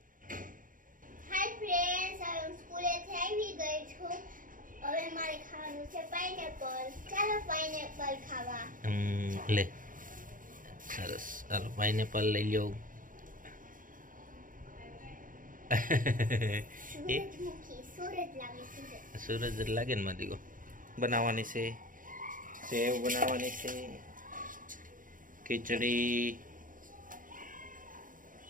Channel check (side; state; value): left; late; 0.39 ms